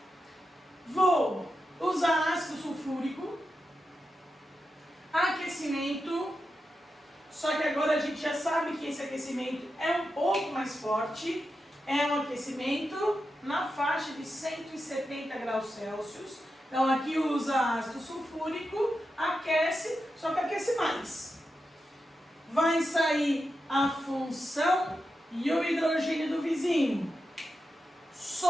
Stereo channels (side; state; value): both; normal; correlation 0.89